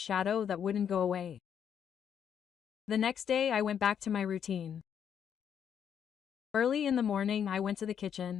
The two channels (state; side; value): quieter; right; 8.4 dB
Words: that wouldn't go away. The next day I went back to my routine. Early in the morning I went to the